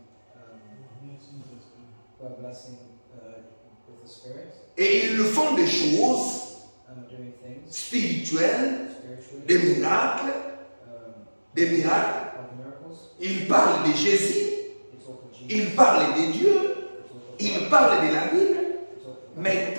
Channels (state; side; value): inverted; both; correlation -1.00